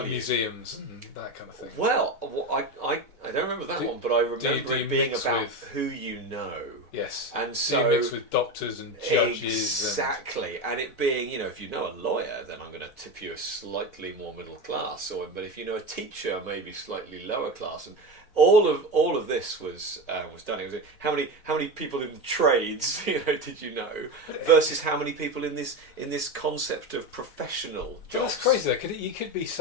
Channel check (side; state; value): right; late; 4.0 ms